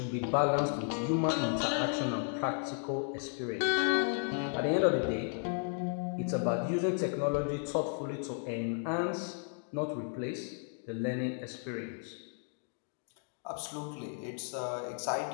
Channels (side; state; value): right; silent; 55 dB below the other